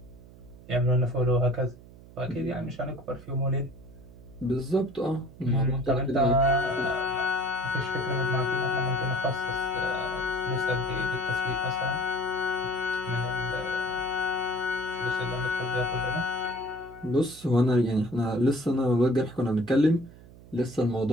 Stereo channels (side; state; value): right; noise; hum, 20 dB below the sound